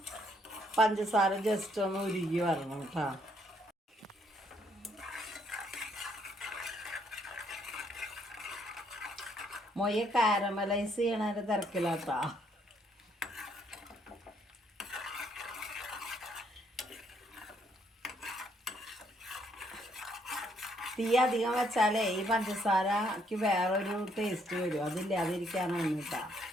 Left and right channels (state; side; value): normal; both; correlation 0.70